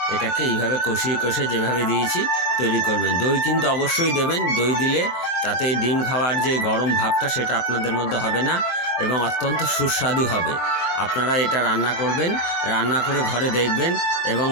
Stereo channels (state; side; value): late; right; 23 ms